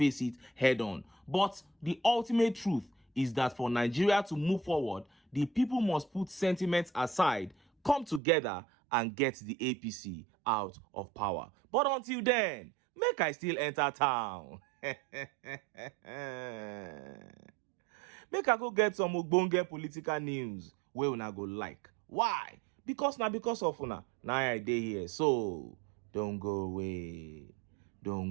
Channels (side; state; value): left; drops out; at 8.2 s